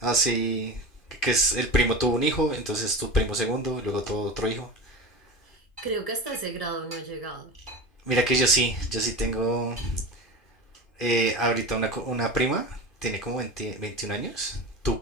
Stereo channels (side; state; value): right; late; 2.5 ms